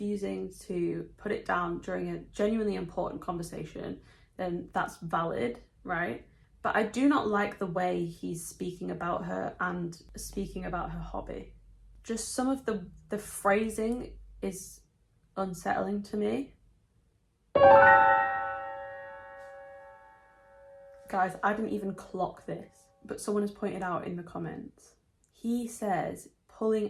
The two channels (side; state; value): both; identical; correlation 1.00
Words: to put it down during a genuinely important conversation, then that's valid, right? But I do not like the way he's speaking about her and speaking about her hobby. Just some of the phrasing is unsettling to me. Guys, I didn't even clock this, but someone has pointed out in the comments. He says